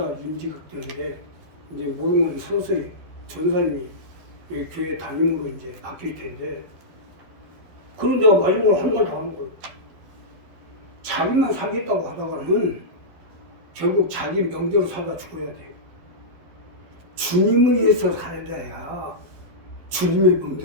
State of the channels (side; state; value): left; late; 12 ms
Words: 임직학 때문에 이제 모든 서서히 전사님이 여기 교회 담임으로 이제 바뀔 텐데 그런 데가 마지막으로 한 번 더 하는 거예요. 자기만 살겠다고 하다가는 결국 자기 명대로 살다 죽어야 돼요. 주님을 위해서 살아야 주님의